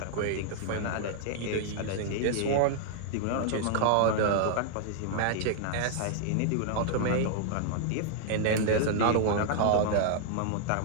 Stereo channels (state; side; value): different; both; correlation -0.01